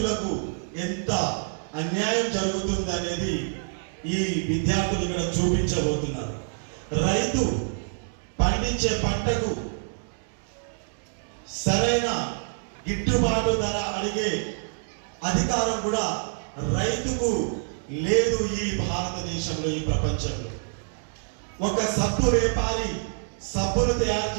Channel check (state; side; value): silent; left; 60 dB below the other